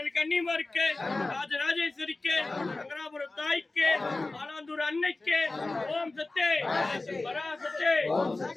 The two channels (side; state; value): right; quieter; 3.2 dB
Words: கன்னிமாருக்கு ராஜராஜேஸ்வரிக்கு நகராபுரம் தாய்க்கு ஆலாந்தூர் அன்னைக்கு ஓம் சக்தி பராசக்தி ஓம்